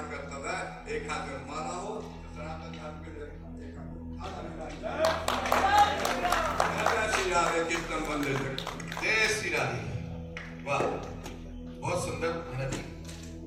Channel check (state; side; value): identical; both; correlation 1.00